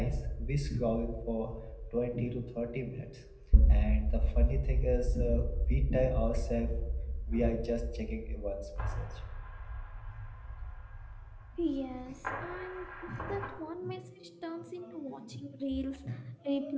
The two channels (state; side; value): identical; both; correlation 1.00